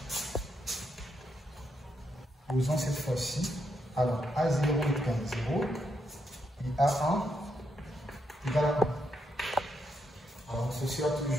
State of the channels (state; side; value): normal; both; correlation 0.80